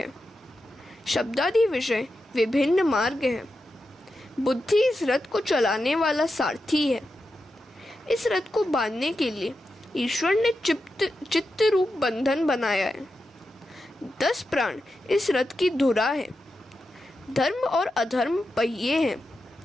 शब्दादि विषय विभिन्न मार्ग हैं। बुद्धि इस रथ को चलाने वाला सारथी है। इस रथ को बांधने के लिए ईश्वर ने चित्त रूप बंधन बनाया है। 10 प्राण इस रथ की धुरा है। धर्म और अधर्म पहिए हैं।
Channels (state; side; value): normal; both; correlation 0.89